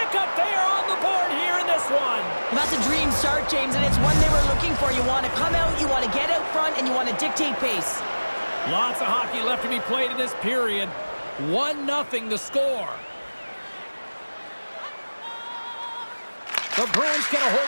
they are on the board here in this one. Well, that's a dream start, James, and it's one they were looking for. You want to come out, you want to get out front, and you want to dictate pace. Lots of hockey left to be played in this period. 1-0 the score. The Bruins get a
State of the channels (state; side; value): inverted; both; correlation -1.00